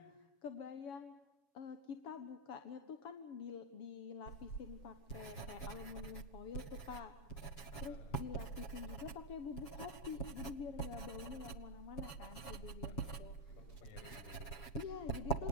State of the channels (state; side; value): late; right; 7.2 ms